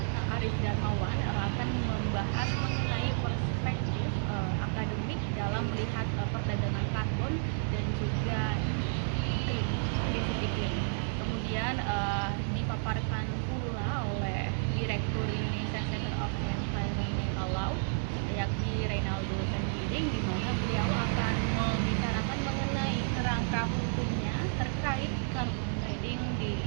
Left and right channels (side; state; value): left; silent; digital silence